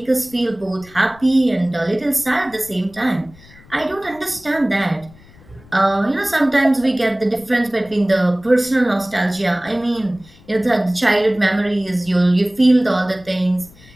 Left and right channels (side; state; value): left; noise; rumble, 24 dB below the sound